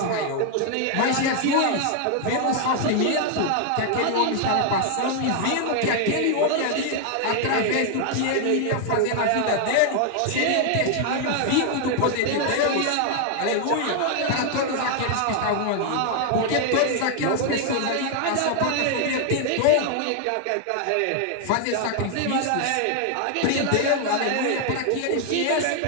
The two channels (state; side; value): different; both; correlation 0.00